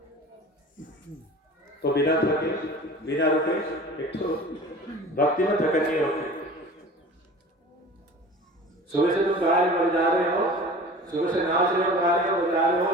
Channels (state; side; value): normal; both; correlation 0.40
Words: तो बिना थके, बिना रुके, एक तो भक्ति में थकन नहीं होती। सुबह से तुम गा रहे जा रहे हो, सुबह से नाच रहे हो, गा रहे हो, बजा रहे हो,